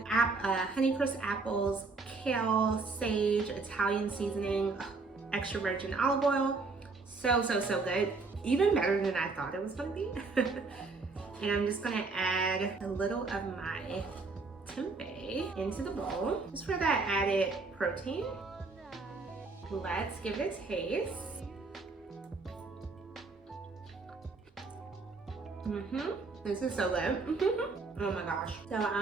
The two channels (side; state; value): left; quieter; 4.0 dB